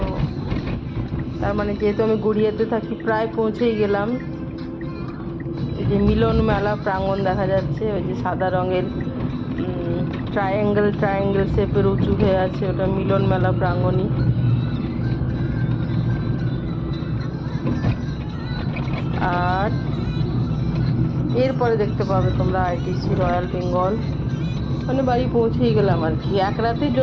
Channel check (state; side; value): identical; both; correlation 1.00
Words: তার মানে যেহেতু আমি গড়িয়াতে থাকি, প্রায় পৌঁছেই গেলাম। এই যে মিলন মেলা প্রাঙ্গণ দেখা যাচ্ছে, ওই যে সাদা রঙের ট্রায়াঙ্গেল শেপের উঁচু হয়ে আছে, ওটা মিলন মেলা প্রাঙ্গণই। আর এরপরে দেখতে পাবে তোমরা আইটিসি রয়্যাল বেঙ্গল। মানে বাড়ি পৌঁছেই গেলাম আর কি, এক রাতের